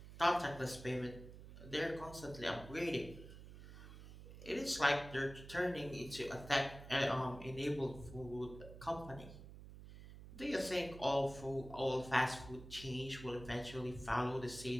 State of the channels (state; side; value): noise; right; hum, 14 dB below the sound